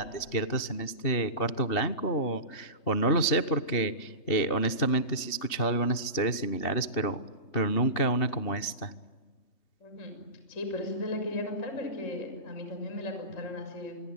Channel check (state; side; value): late; right; 2.7 ms